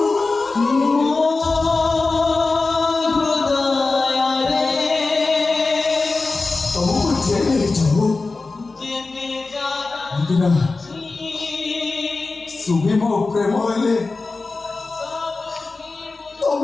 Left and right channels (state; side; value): quieter; right; 3.7 dB